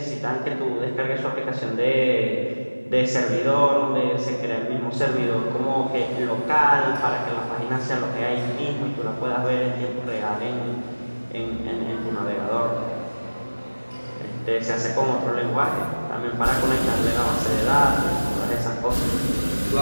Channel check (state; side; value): inverted; both; correlation -1.00